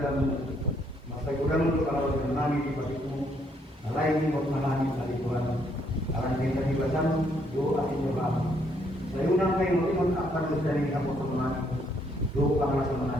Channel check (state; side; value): normal; both; correlation 0.71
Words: masa kurang untuk kalau kami di pasiku. Lain untuk mengalami kali Tuhan. Akan kita dibasam, yo akan jawab. Saya undang kayu untuk apa dari kamu teman, yo panggil